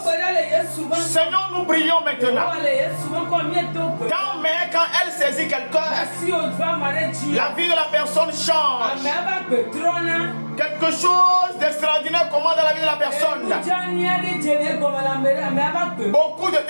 Seigneur, nous prions maintenant. Quand elle saisit quelqu'un, la vie de la personne change. Quelque chose d'extraordinaire commence dans la vie de la personne. Beaucoup de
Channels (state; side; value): inverted; both; correlation -1.00